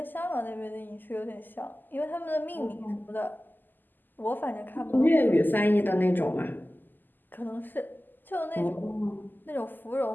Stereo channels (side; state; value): right; late; 0.089 ms